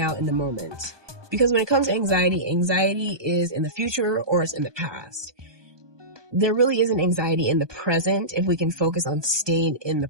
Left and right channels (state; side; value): late; left; 1.2 ms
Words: in the moment. Because when it comes to anxiety, anxiety is in the future or it's in the past. There really isn't anxiety in the present if we can focus on staying in the